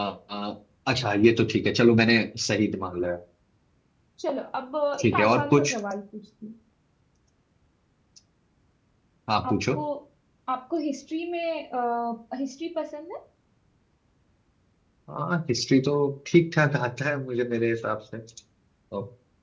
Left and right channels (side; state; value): both; identical; correlation 1.00